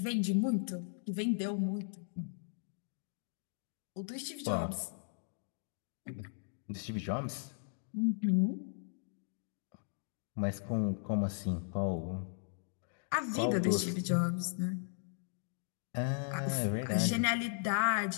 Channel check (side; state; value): right; silent; digital silence